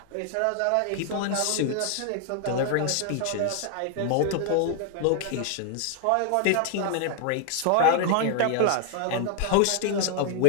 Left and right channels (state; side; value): different; both; correlation 0.00